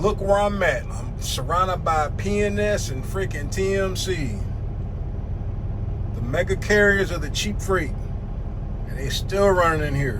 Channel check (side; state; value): both; identical; correlation 1.00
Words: where I'm at. I'm surrounded by PNS and freaking TMC. The mega carriers of the cheap freight. And they still running in